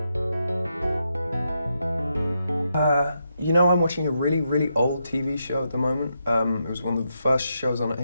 You know, I'm watching a really, really old TV show at the moment. It was one of the first shows on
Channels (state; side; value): inverted; both; correlation -0.82